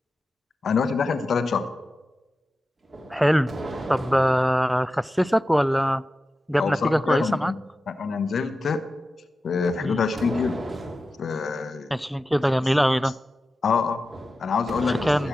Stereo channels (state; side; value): normal; both; correlation 0.93